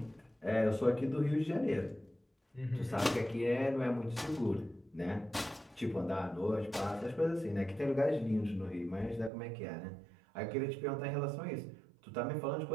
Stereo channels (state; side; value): drops out; left; at 9.3 s